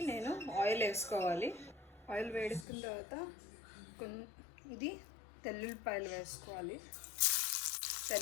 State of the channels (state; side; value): drops out; right; at 2.7 s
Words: నేను ఆయిల్ వేసుకోవాలి. ఆయిల్ వేడుకున్న తర్వాత ఇది తెల్లుల్లిపాయలు వేసుకోవాలి.